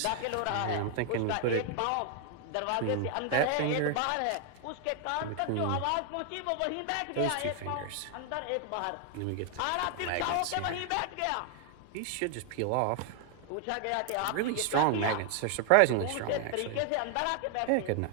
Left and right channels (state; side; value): different; both; correlation 0.00